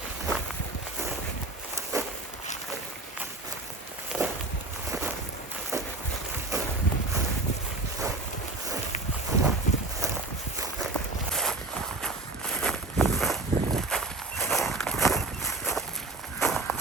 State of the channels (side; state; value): left; quieter; 3.2 dB